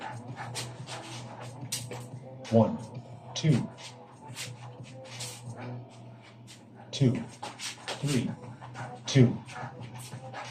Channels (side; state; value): both; identical; correlation 1.00